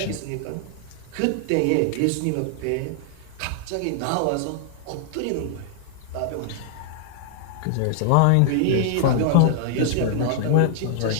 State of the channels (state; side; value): different; both; correlation 0.00